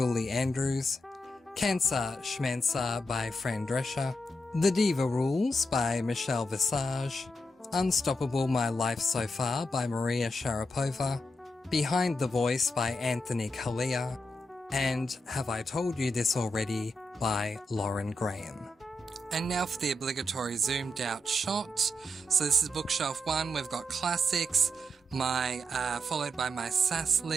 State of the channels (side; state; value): both; normal; correlation 0.84